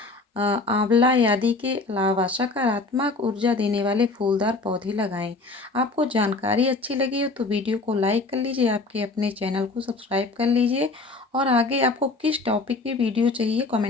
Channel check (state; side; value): quieter; right; 3.5 dB